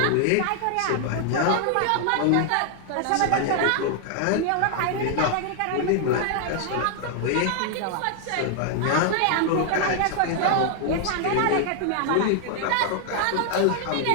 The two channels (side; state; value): both; different; correlation 0.00